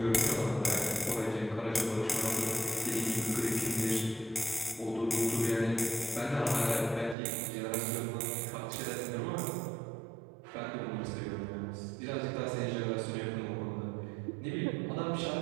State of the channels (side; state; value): left; drops out; at 7.2 s